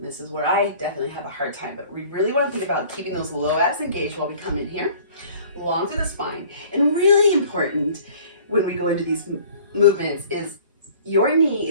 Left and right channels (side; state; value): both; inverted; correlation -0.50